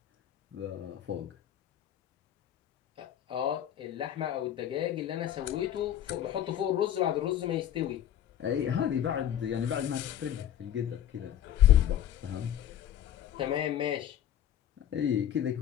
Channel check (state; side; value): quieter; right; 10.9 dB